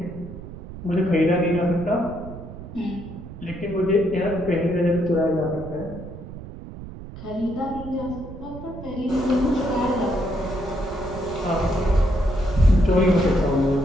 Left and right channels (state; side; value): noise; right; rumble, 12 dB below the sound